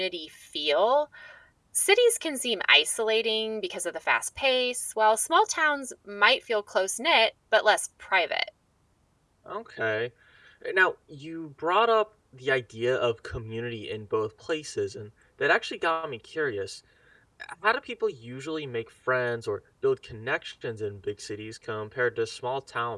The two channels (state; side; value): identical; both; correlation 1.00